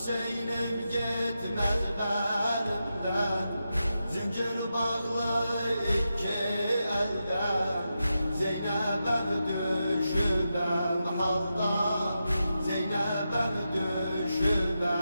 gitmez benimden, zincir bağlı iki elden. Zeynep'em düşübem halda, Zeynep'em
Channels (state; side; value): inverted; both; correlation -0.88